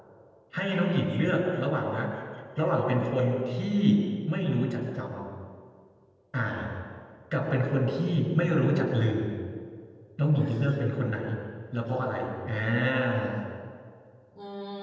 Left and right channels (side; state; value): both; identical; correlation 1.00